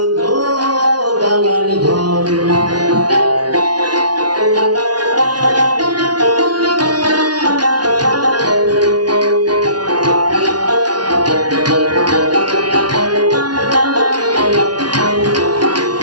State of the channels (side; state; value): left; late; 0.70 ms